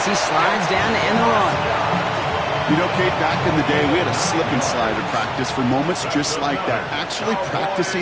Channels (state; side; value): identical; both; correlation 1.00